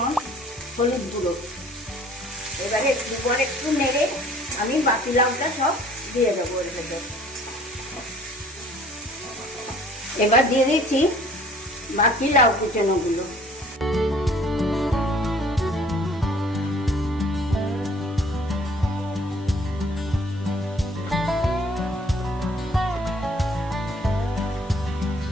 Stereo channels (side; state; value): both; normal; correlation 0.54